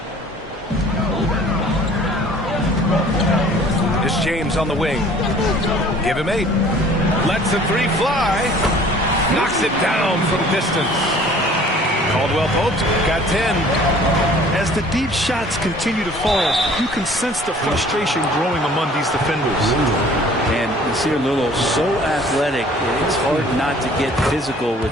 It's James on the wing. Give him 8. Lets the 3 fly. Knocks it down from distance. Caldwell Pope got 10. As the deep shots continue to fall, you can sense the frustration growing among these defenders. And Nasir Little, so athletic, it's hard not to get physical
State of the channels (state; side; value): normal; both; correlation 0.51